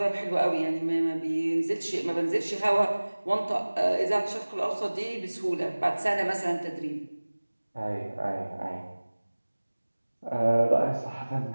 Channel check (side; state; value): both; inverted; correlation -1.00